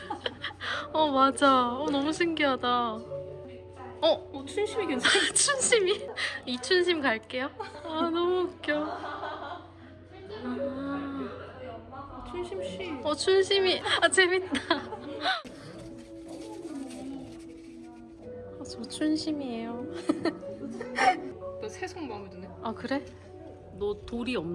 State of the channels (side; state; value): both; identical; correlation 1.00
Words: 맞아. 너무 신기하다. 춘심이 괜찮아. 춘심이? 이춘심 갈게요. 너무 웃겨. 춘심 씨. 춘심이. 재밌다. 저 춘심이에요. 너 새송 마음에 드네. 아, 그래? 너 돌이